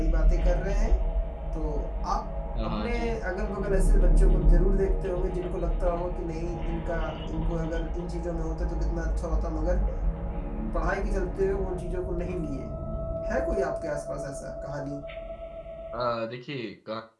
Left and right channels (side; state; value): both; identical; correlation 1.00